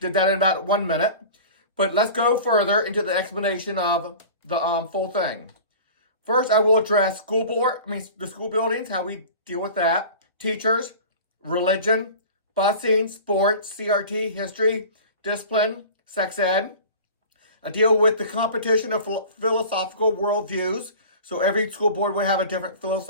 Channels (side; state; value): both; inverted; correlation -0.39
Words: Did that in about 1 minute. But let's go further into the explanation of the full thing. First, I will address the school buildings, how we deal with that, teachers, religion, busing, sports, CRT, history, discipline, sex ed. I deal with the competition of philosophical worldviews. So every school board would have a different